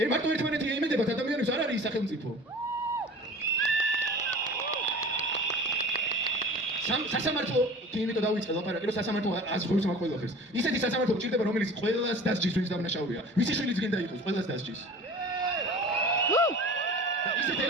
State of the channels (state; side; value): normal; both; correlation 0.41